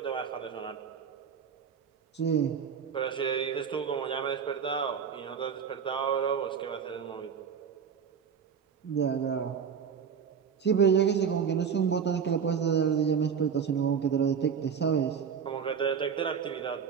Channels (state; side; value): quieter; left; 7.0 dB